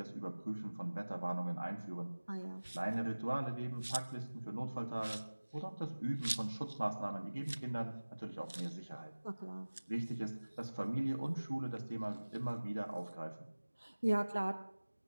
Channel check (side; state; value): both; inverted; correlation -1.00